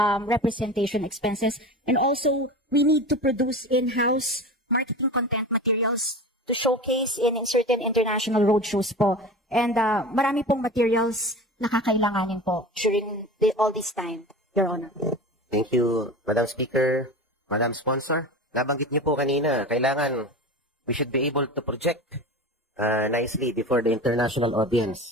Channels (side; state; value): both; normal; correlation 0.32